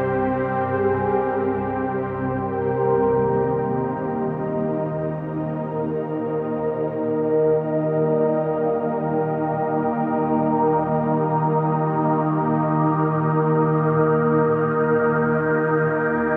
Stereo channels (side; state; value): both; identical; correlation 1.00